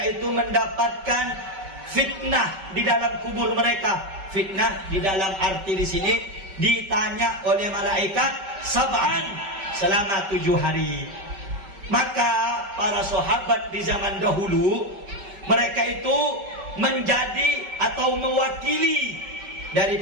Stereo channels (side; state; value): left; late; 5.2 ms